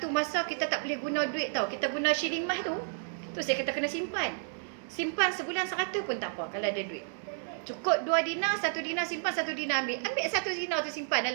masa kita tak boleh guna duit tau. Kita guna shilling emas tu. Tu saya kata kena simpan. Simpan sebulan 100 pun tak apa kalau ada duit. Cukup 2 dinar, 1 dinar simpan, 1 dinar ambil. Ambil 1 dinar tu simpan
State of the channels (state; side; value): silent; left; digital silence